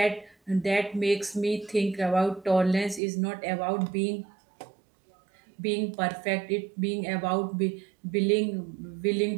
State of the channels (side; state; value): left; drops out; at 3.0 s